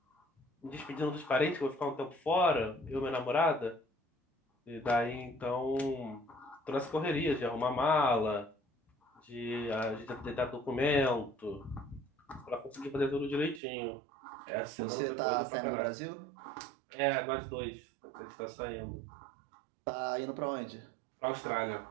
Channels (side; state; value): left; drops out; at 13.6 s